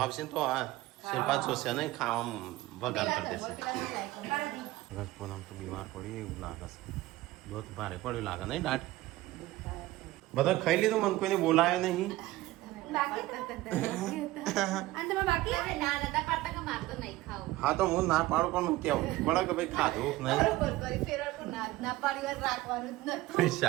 આવશે ને તો આ શિલ્પા જોશે નહીં ખાવામાં વગાડ કરી દેશે. પૂનમ તો બીમાર પડી એવું લાગે છે. બહુ ભારે પડ્યું લાગે નહીં દાટ. બધા ખાઈ લીધું મને કોઈને બોલાયો નહીં. હા તો હું ના પાડું પણ કેવું પડે કે ભાઈ ખાધું નહીં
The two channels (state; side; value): quieter; left; 17.6 dB